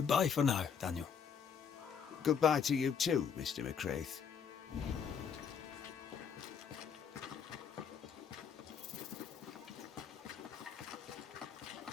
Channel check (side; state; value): right; quieter; 7.1 dB